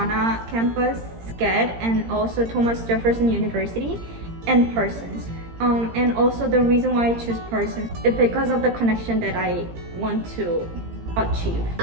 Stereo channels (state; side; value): late; left; 17 ms